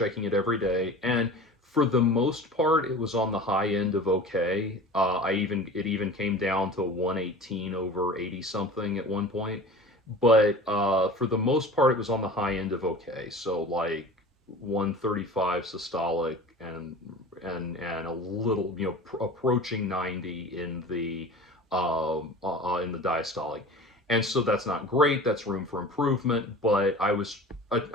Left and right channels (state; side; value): normal; both; correlation 0.38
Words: it every day, and for the most part, it was on the high end of okay. It even came down to 118 over 80 something at one point, but for the most part, it was on the high end of okay. So like 135 systolic and a little, approaching 90 in the diastolic. And so that's not great. That's room for improvement. But I was